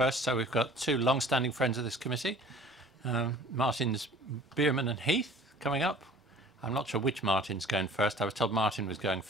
So we've got two long-standing friends of this committee, Martins Bierman and Heath, coming up. I'm not sure which Martin's going first. I was told Martin was going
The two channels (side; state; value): both; normal; correlation 0.48